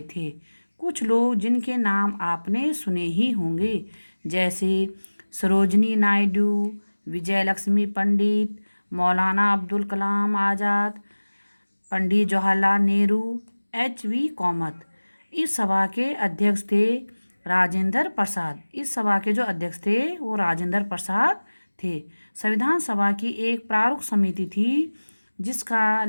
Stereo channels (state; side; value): inverted; both; correlation -1.00